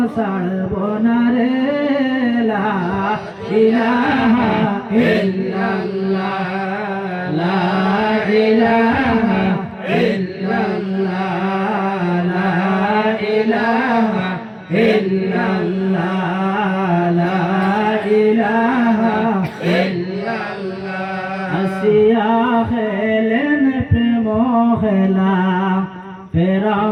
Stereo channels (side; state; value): both; identical; correlation 1.00